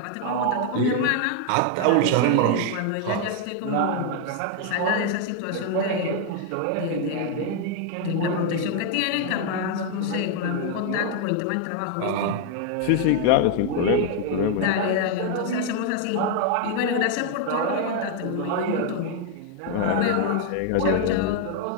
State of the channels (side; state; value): both; different; correlation 0.00